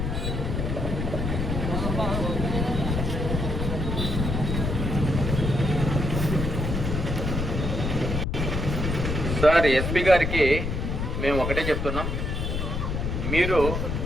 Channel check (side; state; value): left; noise; rumble, 2 dB below the sound